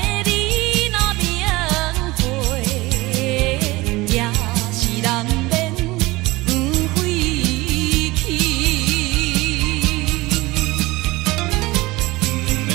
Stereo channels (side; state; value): left; quieter; 20.9 dB